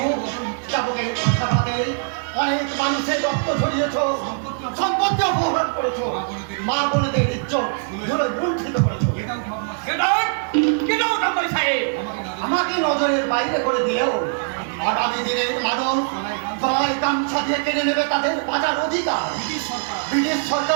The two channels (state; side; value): silent; left; digital silence